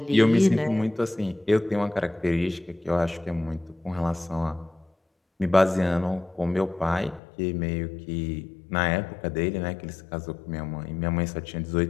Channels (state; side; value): drops out; right; at 7.2 s